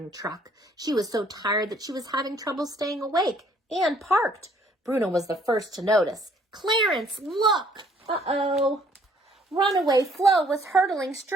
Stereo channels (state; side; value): normal; both; correlation 0.62